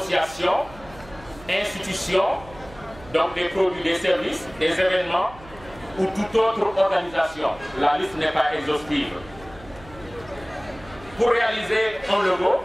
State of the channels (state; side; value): noise; right; hum, 20 dB below the sound